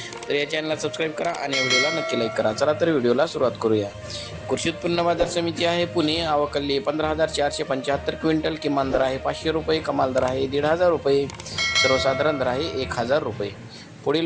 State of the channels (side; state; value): both; identical; correlation 1.00